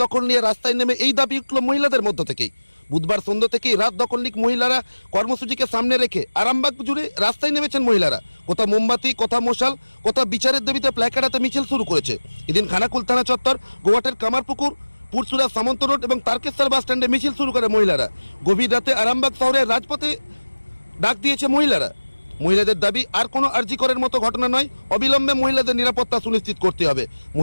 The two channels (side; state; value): both; inverted; correlation -1.00